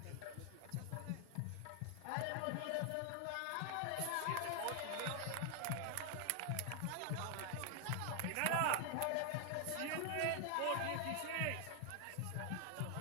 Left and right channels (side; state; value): both; different; correlation 0.00